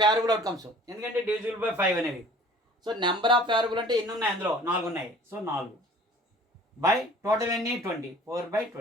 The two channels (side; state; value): both; normal; correlation 0.49